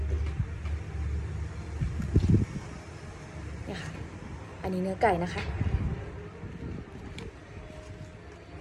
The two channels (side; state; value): both; identical; correlation 1.00